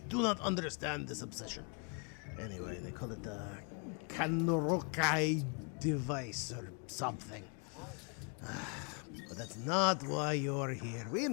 do not understand this obsession. Anyway, they call it the Kanorokai device or something. But that's not why you're here. We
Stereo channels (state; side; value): quieter; right; 37.2 dB